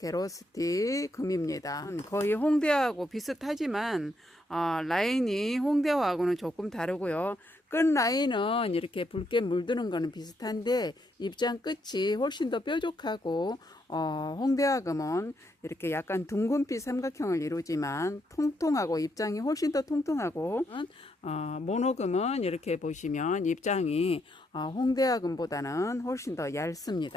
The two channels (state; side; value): normal; both; correlation 0.77